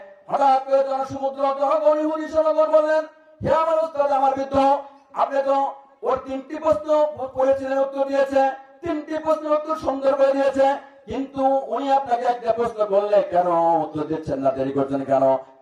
হঠাৎ করে জনসমুদ্র জনগণ ইহুদি জনগণ বললেন, হে আমার উস্তাদ, আমার বৃদ্ধ, আপনি তো ওর 3টি প্রশ্ন পড়েছিলেন, উত্তর দিয়েছে, 3টি প্রশ্ন উত্তর সুন্দর করে দিয়েছে, কিন্তু উনি আপনাকে একটা প্রশ্ন করলে কেন উত্তর দিচ্ছেন না, দেরি করছেন কেন?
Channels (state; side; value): identical; both; correlation 1.00